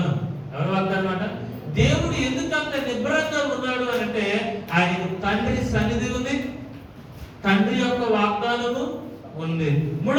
ఎవరి వాగ్దానం అంట? దేవుడు ఎందుకు అంత నిబ్బరంగా ఉన్నాడు అని అంటే, ఆయనకు తండ్రి సన్నిధి ఉంది, తండ్రి యొక్క వాగ్దానము ఉంది.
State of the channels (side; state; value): both; identical; correlation 1.00